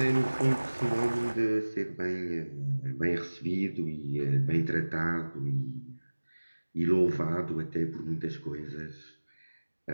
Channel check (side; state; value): both; inverted; correlation -1.00